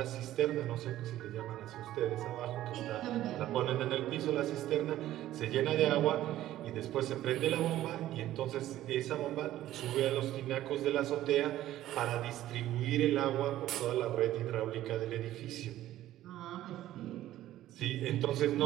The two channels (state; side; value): quieter; left; 13.8 dB